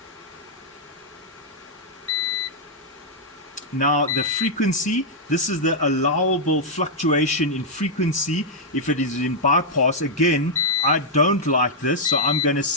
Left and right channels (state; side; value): normal; both; correlation -0.05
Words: Now the frequency, this is the allowable fluctuation in frequency if it is in bypass. Again, I don't like this, so I'm going to